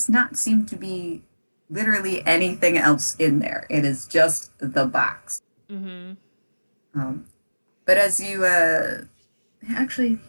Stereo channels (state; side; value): inverted; both; correlation -1.00